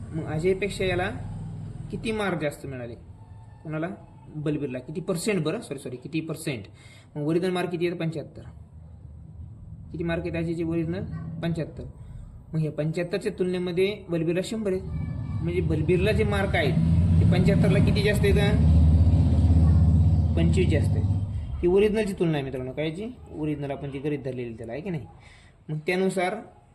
मग अजयपेक्षा याला किती मार्क जास्त मिळाले, कोणाला, बलबीरला. किती पर्सेंट, बरं सॉरी किती पर्सेंट. मग ओरिजिनल मार्क किती आहेत, 75. किती मार्क आहेत अजयचे ओरिजिनल, 75. मग हे 75च्या तुलनेमध्ये बलबीरला 100 आहेत. म्हणजे बलबीरला जे मार्क आहेत ते 75ला किती जास्त आहेत, 25 जास्त आहेत. ही ओरिजिनलची तुलना आहे मित्रांनो, कायची, ओरिजिनल आपण जी गरीब धरलेली त्याला, आहे की नाही. मग त्यानुसार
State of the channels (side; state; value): both; identical; correlation 1.00